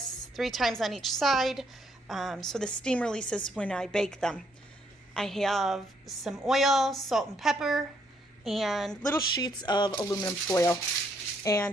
3 times on each side, so the steam releases when I bake them. I have some oil, salt and pepper, and little sheets of aluminum foil.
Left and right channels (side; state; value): both; normal; correlation 0.71